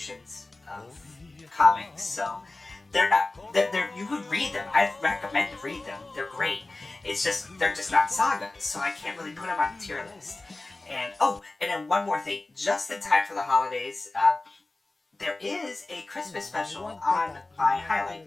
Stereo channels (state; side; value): quieter; right; 3.1 dB